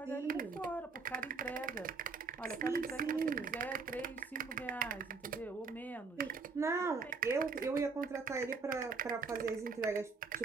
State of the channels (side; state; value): left; quieter; 4.6 dB